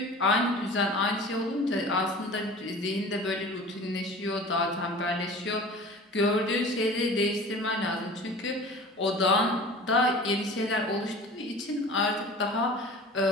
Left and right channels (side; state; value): both; normal; correlation 0.40